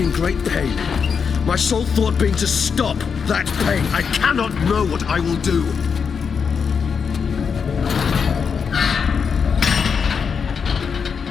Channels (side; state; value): right; quieter; 6.2 dB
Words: in great pain. My sole thought being to stop that pain. I cannot know what I will do.